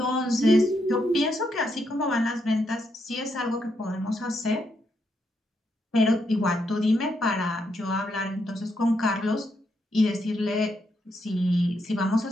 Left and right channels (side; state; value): both; normal; correlation 0.79